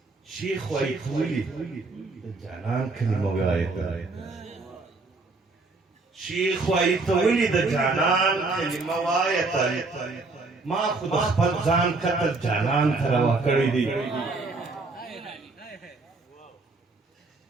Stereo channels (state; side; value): quieter; left; 3.6 dB